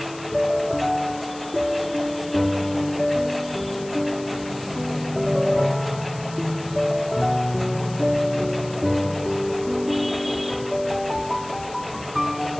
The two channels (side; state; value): left; noise; hiss, 18 dB below the sound